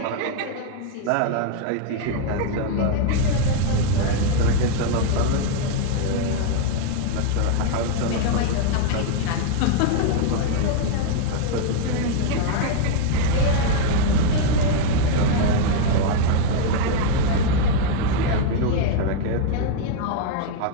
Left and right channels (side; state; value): both; different; correlation 0.00